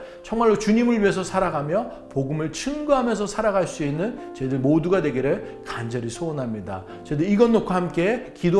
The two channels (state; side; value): identical; both; correlation 1.00